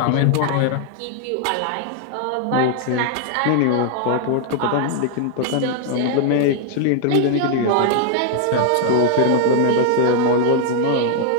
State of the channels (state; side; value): different; both; correlation 0.00